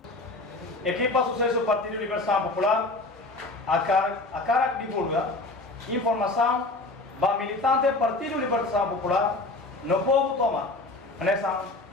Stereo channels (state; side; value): quieter; right; 3.1 dB